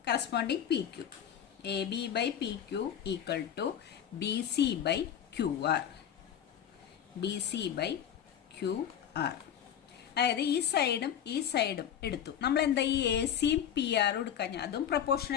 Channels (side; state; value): right; quieter; 9.4 dB